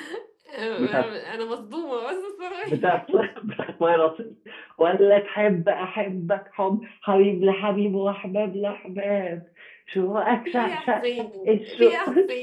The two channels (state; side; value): identical; both; correlation 1.00